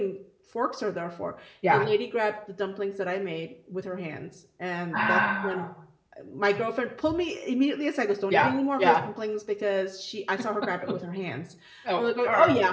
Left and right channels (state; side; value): identical; both; correlation 1.00